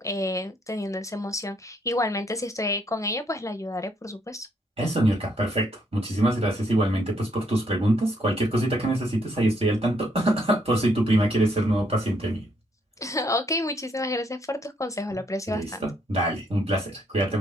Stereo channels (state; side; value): normal; both; correlation 0.71